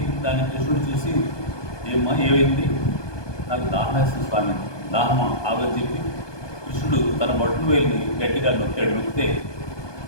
దాన్ని కృష్ణుడు చూసి, ఏమైంది, నాకు దాహం వేస్తుంది స్వామి, దాహమా ఆగని చెప్పి కృష్ణుడు తన బొట్టు వేలిని గట్టిగా నొక్కాడు. నొక్కితే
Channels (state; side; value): late; right; 1.2 ms